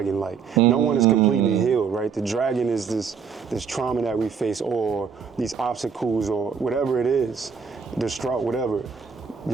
Like, no one is completely healed, right? The dragon is this trauma that we face, or these obstacles, or whatever it is, distraught, whatever.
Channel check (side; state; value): left; quieter; 6.2 dB